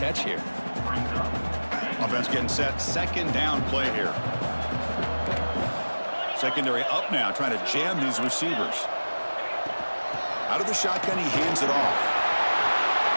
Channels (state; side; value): inverted; both; correlation -1.00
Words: here. Offense getting set. Second down play here. Secondary up now, trying to jam these receivers. Out of the shotgun, he hands it off.